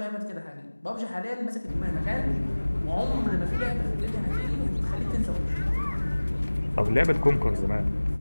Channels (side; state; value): both; inverted; correlation -1.00